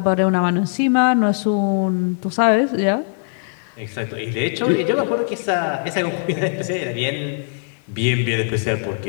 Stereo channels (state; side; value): silent; right; digital silence